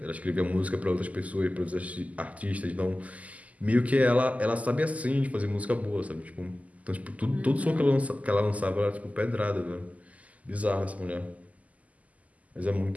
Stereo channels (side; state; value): left; late; 0.073 ms